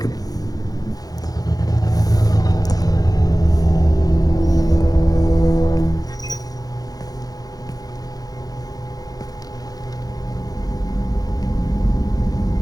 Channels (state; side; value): late; right; 0.18 ms